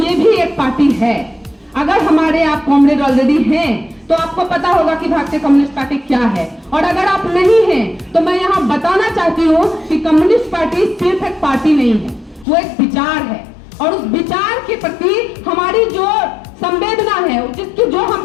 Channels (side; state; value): right; drops out; at 12.5 s